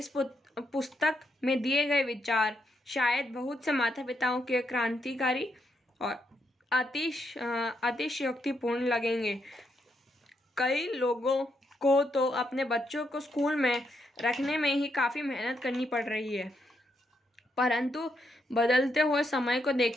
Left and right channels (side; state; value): both; normal; correlation 0.79